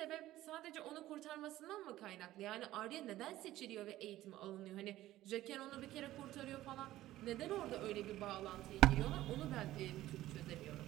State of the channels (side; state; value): left; quieter; 15.1 dB